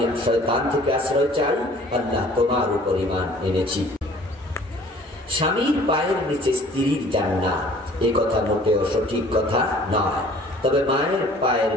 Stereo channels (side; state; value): both; normal; correlation 0.52